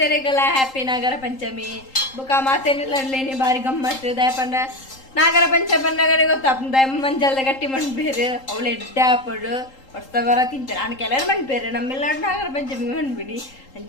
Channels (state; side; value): late; right; 3.8 ms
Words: ಹ್ಯಾಪಿ ನಾಗರ ಪಂಚಮಿ ಬುಕ್ಕ ಮಾತೆರೆಲ್ಲೇ ಬಾರಿ ಗಮ್ಮತ್ತು ದಯಪಂಡ ನಾಗರ ಪಂಚಮಿ ಪಂಡಗನೆ ಗೊತ್ತಾಗ್ತದೆ. ಮಂಜಲ್ದ ಗಟ್ಟಿ ಮಣ್ಬೇರು ಅವಳು ಎಡ್ಡೆ ಹಾಪಡು ಹೊಡ್ತವರ ತಿಂತಾರೆ ಅಣ್ಣ ಕೆಲವರು ಮಣ್ಬೇರೆ ನಮ್ಮೆಲ್ಲ ನಾಗರ ಪಂಚಮಿ ಮಣ್ಬಿಡಿ